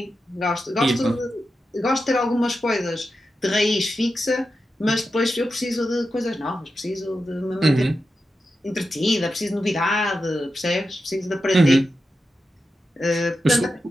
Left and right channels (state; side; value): normal; both; correlation 0.90